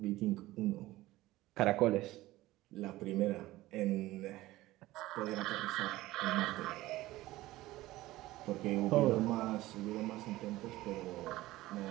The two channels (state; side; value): quieter; left; 17.4 dB